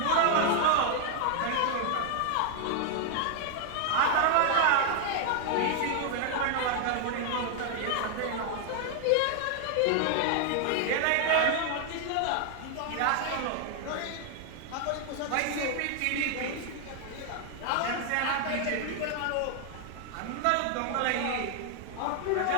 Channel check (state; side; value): different; both; correlation 0.00